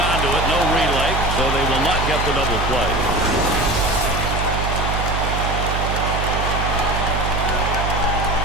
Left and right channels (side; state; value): right; noise; hum, 2 dB below the sound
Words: to it. No relay, so they will not get the double play.